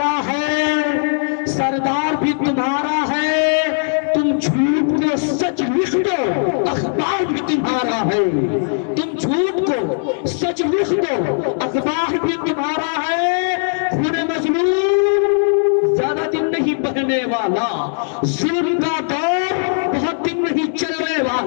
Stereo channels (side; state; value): right; silent; digital silence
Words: है, सरदार भी तुम्हारा है, तुम झूठ को सच लिख दो, अखबार भी तुम्हारा है, तुम झूठ को सच लिख दो, अखबार भी तुम्हारा है, खून मजलूम ज्यादा दिन नहीं बहने वाला, जुल्म का दौर बहुत दिन नहीं चलने